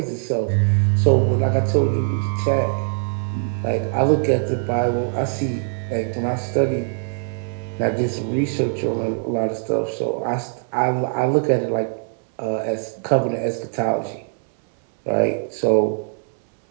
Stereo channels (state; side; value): silent; left; 64 dB below the other